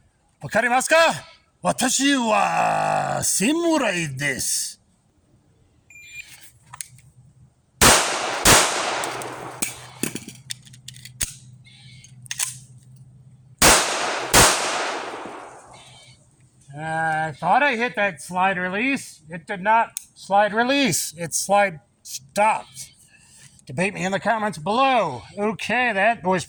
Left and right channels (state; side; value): identical; both; correlation 1.00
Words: Wakarimasu ka? Watashi wa samurai desu. I thought I hit that slide release. It did not slide release. It slide stopped. Debate me in the comments below. Okay, that was